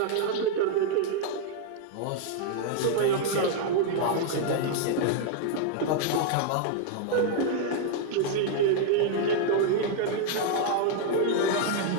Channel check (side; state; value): both; different; correlation 0.00